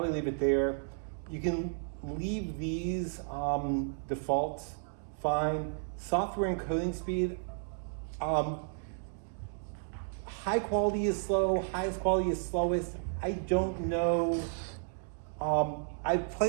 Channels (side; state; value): left; silent; digital silence